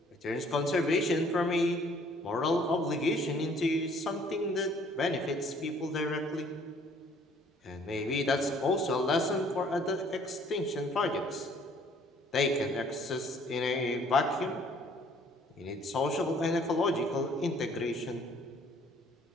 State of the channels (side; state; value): both; normal; correlation 0.59